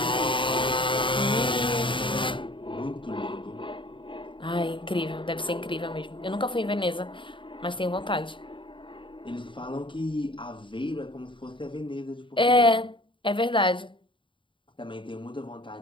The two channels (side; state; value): right; late; 0.24 ms